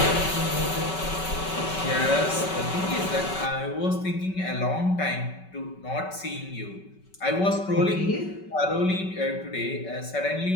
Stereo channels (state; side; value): late; right; 5.3 ms